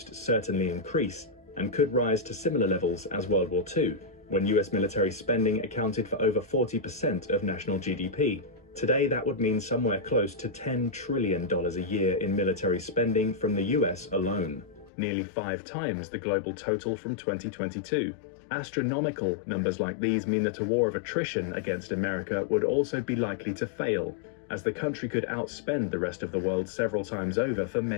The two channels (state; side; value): drops out; right; at 14.9 s